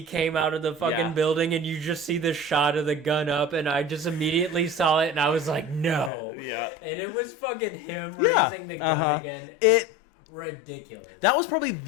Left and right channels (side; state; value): right; drops out; at 6.1 s